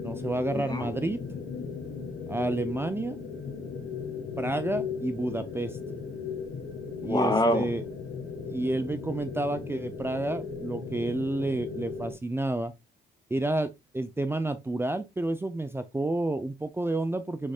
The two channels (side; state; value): both; normal; correlation 0.78